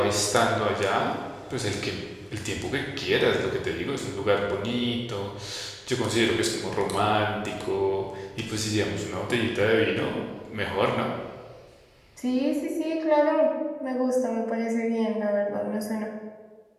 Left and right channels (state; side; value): identical; both; correlation 1.00